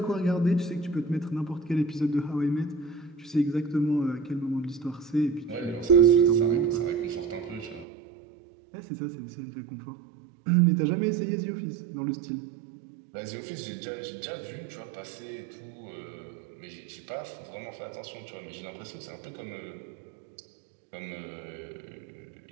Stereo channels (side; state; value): left; drops out; at 7.9 s